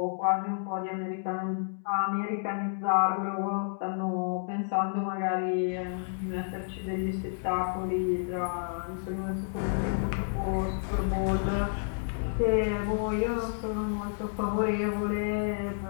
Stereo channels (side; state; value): right; silent; digital silence